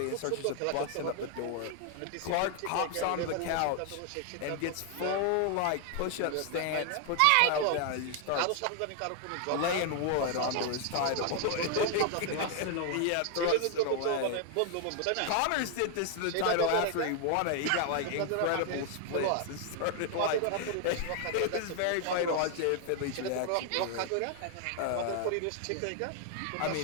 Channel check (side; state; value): both; different; correlation 0.00